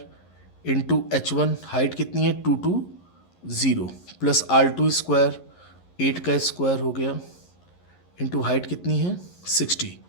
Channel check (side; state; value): right; late; 11 ms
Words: इंटू H1 हाइट कितनी है 220 प्लस R2 स्क्वायर 8 का स्क्वायर हो गया इंटू हाइट कितनी है 60।